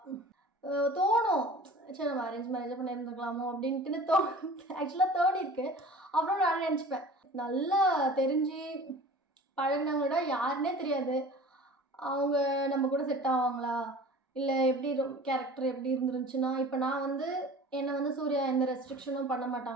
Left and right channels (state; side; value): normal; both; correlation 0.42